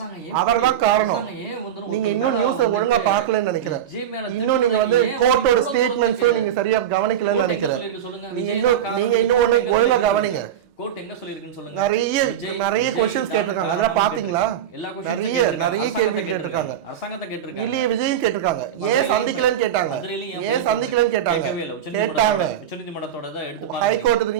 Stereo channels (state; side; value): quieter; left; 9.9 dB